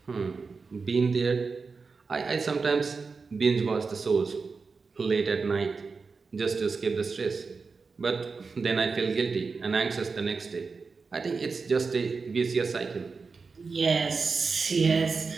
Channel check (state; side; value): quieter; left; 4.6 dB